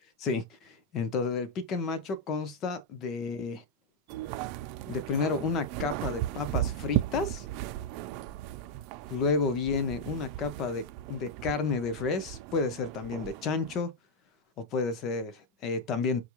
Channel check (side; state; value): both; normal; correlation 0.02